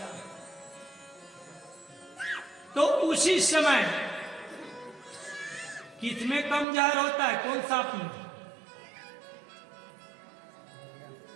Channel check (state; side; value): drops out; left; at 6.7 s